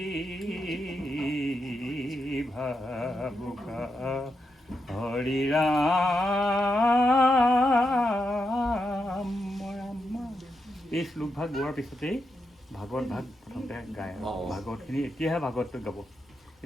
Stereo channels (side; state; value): both; normal; correlation 0.84